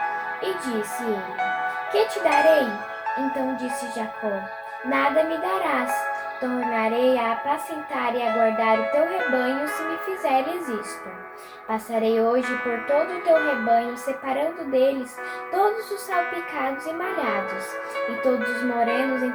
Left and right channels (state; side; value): identical; both; correlation 1.00